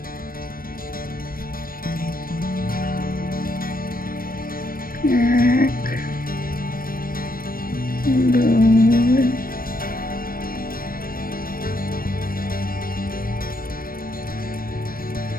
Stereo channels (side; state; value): right; late; 0.42 ms